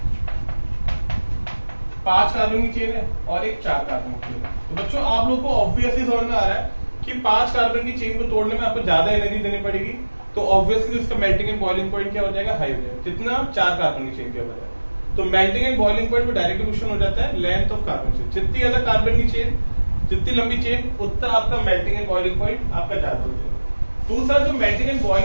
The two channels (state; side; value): inverted; both; correlation -1.00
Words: 5 कार्बन की चेन है और एक 4 कार्बन की चेन है। तो बच्चों आप लोग को ऑब्वियसली समझ में आ रहा है कि 5 कार्बन की चेन को तोड़ने में आपको ज्यादा एनर्जी देनी पड़ेगी, तो ऑब्वियसली उसका मेल्टिंग एंड बॉइलिंग पॉइंट क्या हो जाएगा? हाई हो जाएगा। जितना 4 कार्बन की चेन के बजाय, तो मेल्टिंग एंड बॉइलिंग पॉइंट में डायरेक्ट रिलेशन हो जाता है लेंथ ऑफ कार्बन चेन। जितनी ज्यादा कार्बन की चेन, जितनी लंबी चेन, उतना आपका मेल्टिंग एंड बॉइलिंग पॉइंट आपका ज्यादा हो जाएगा। दूसरा जो मेल्टिंग एंड